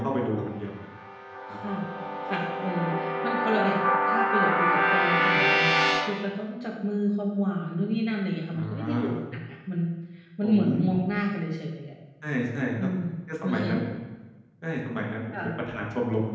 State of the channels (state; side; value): identical; both; correlation 1.00